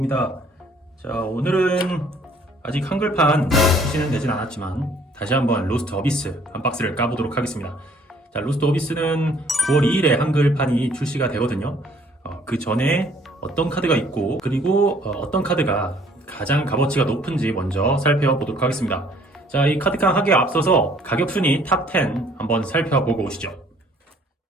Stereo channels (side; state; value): both; normal; correlation 0.59